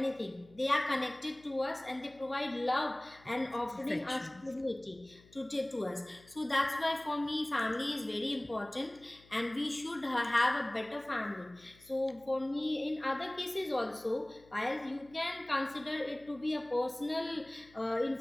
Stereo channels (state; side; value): noise; left; hum, 26 dB below the sound